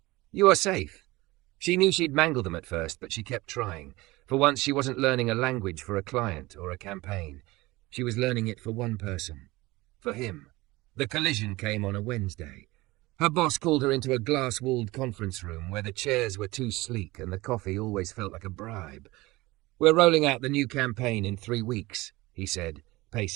You are safe. She knew she'd mangle them at first, but she kept trying. For once she wasn't learning a language for a client or a campaign. She was learning it for one person. For him. The collision came on a Wednesday. Her boss called her into a glass-walled conference room where the chairs were too sleek and the coffee always felt like a bribe. We're rolling out the new campaign in 3 weeks, he said,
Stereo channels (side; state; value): left; quieter; 20.7 dB